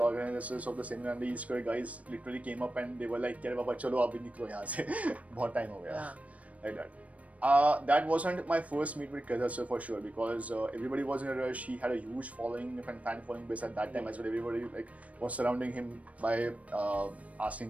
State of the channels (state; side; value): late; left; 0.067 ms